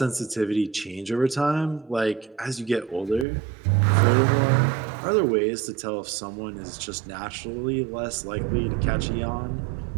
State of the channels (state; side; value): drops out; left; at 3.2 s